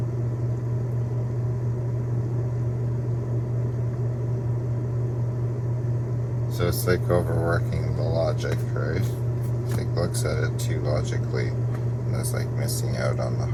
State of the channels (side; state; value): both; identical; correlation 1.00